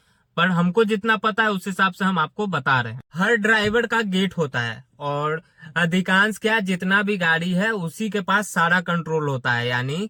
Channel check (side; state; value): both; identical; correlation 1.00